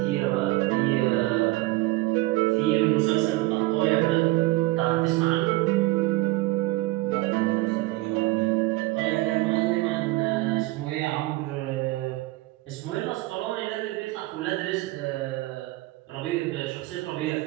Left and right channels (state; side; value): quieter; left; 19.7 dB